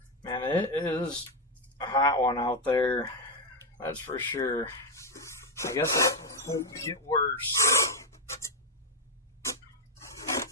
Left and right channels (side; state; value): both; normal; correlation 0.05